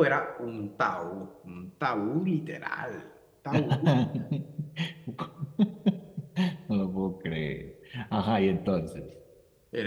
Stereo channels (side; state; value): both; identical; correlation 1.00